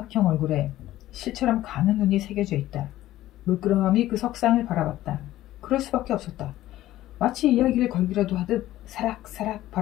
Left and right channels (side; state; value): right; quieter; 14.7 dB